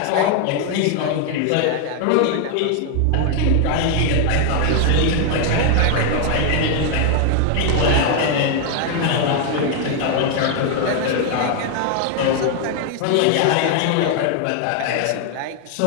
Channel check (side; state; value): both; different; correlation 0.00